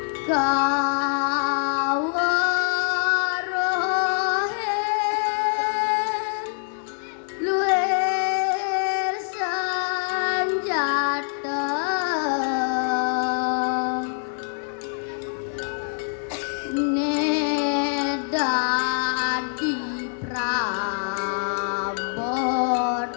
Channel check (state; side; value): silent; right; digital silence